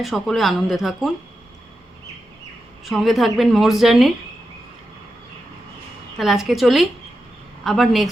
সকলে আনন্দে থাকুন। সঙ্গে থাকবেন মোর্স জার্নির। তাহলে আজকে চলি, আবার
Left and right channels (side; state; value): both; normal; correlation 0.89